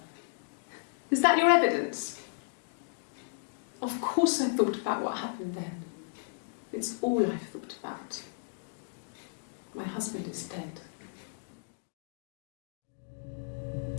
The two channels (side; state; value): right; silent; digital silence